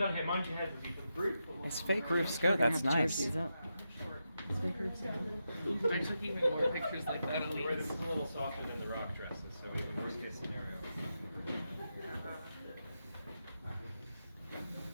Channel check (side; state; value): both; inverted; correlation -0.87